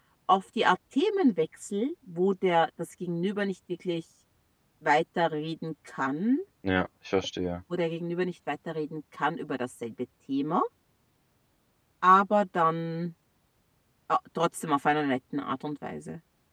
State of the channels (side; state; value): both; identical; correlation 1.00